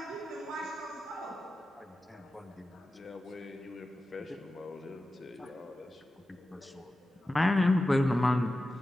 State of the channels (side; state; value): both; normal; correlation 0.93